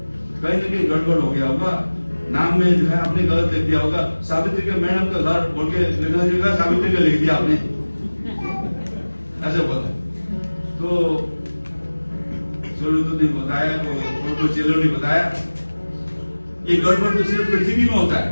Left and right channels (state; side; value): inverted; both; correlation -1.00